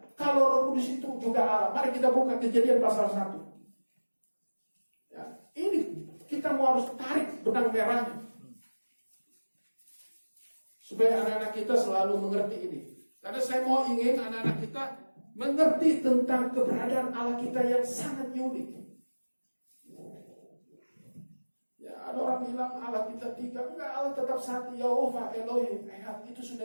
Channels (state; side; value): inverted; both; correlation -1.00